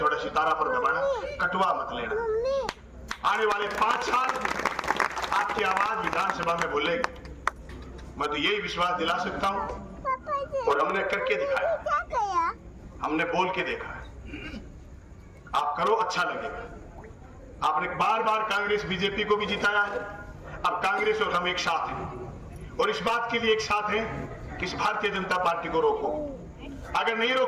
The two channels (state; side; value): identical; both; correlation 1.00